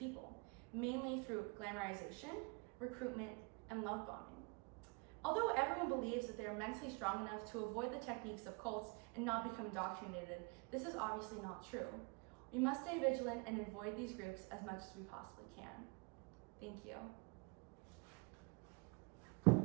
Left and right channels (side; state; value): left; quieter; 30.5 dB